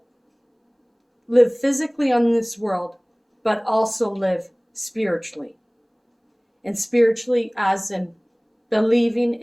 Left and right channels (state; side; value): identical; both; correlation 1.00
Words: live physically on this world, but also live spiritually. And spiritually as in believing